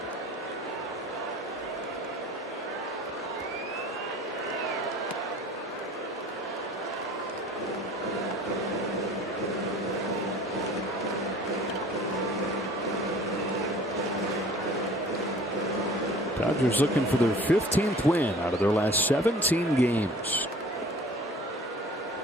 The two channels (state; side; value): normal; both; correlation 0.47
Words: Dodgers looking for their 15th win out of their last 17 games.